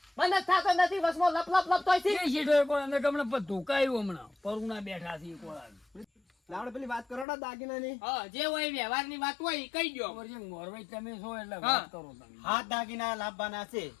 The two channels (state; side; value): drops out; right; at 7.2 s